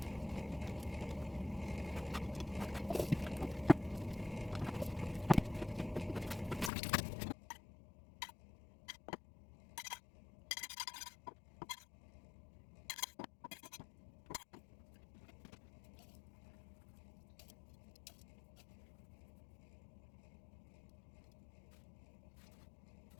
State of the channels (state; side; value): drops out; right; at 6.7 s